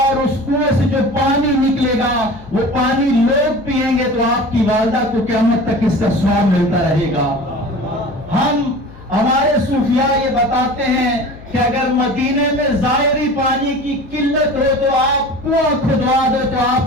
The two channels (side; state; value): left; noise; hum, 20 dB below the sound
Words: اس کنویں سے جو پانی نکلے گا وہ پانی لوگ پیئیں گے تو آپ کی والدہ کو قیامت تک اس کا ثواب ملتا رہے گا. ہمارے صوفیاء یہ بتاتے ہیں کہ اگر مدینے میں ظاہری پانی کی قلت ہو تو آپ کنواں کھدوا دو تو